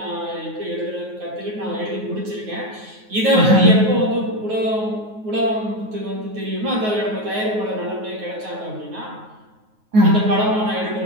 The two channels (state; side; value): late; left; 9.4 ms